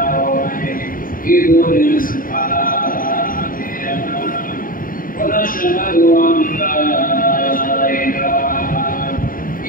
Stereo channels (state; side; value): late; right; 0.41 ms